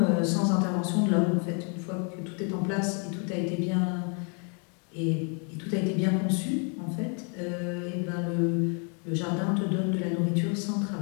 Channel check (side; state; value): right; quieter; 38.3 dB